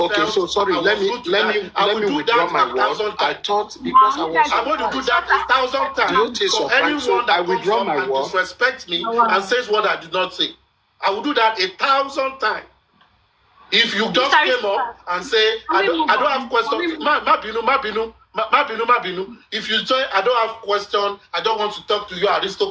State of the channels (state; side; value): identical; both; correlation 1.00